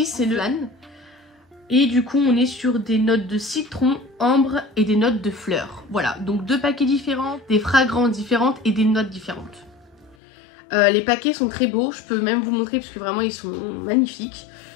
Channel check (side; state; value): right; drops out; at 10.2 s